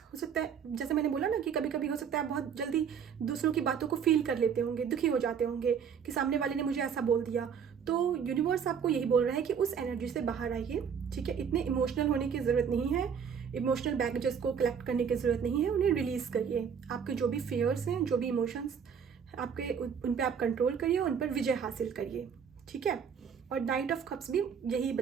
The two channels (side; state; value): left; quieter; 7.2 dB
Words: हो सकता है, जैसे मैंने बोला ना, कि कभी कभी हो सकता है आप बहुत जल्दी दूसरों की बातों को फील कर लेते होंगे, दुखी हो जाते होंगे कि सामने वाले ने मुझे ऐसा बोल दिया, तो यूनिवर्स आपको यही बोल रहा है कि उस एनर्जी से बाहर आइए, ठीक है। इतने इमोशनल होने की ज़रूरत नहीं है, इमोशनल बैगेजेस को कलेक्ट करने की ज़रूरत नहीं है, उन्हें रिलीज़ करिए। आपके जो भी फियर्स हैं, जो भी इमोशंस आपके, उन पर आप कंट्रोल करिए, उन पर विजय हासिल करिए, ठीक है। और नाइट ऑफ कप्स भी यही